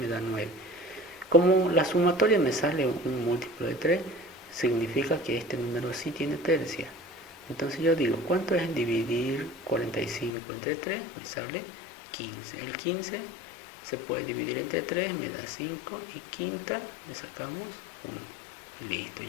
da 9. Como la sumatoria me sale un múltiplo de 3, significa que este número sí tiene tercia. Entonces yo digo, ¿cuánto es dividir 45 entre 3? Me sale 15. El 15 se puede dividir entre 3, me da 5 y quinta le sacamos 1. Listo,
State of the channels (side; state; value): right; drops out; at 10.3 s